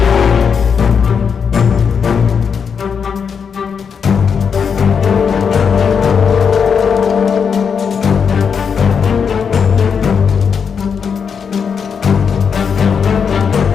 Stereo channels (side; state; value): right; quieter; 6.5 dB